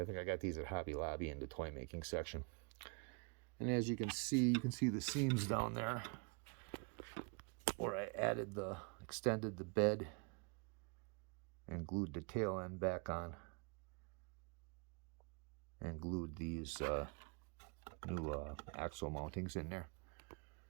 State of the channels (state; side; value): quieter; left; 34.8 dB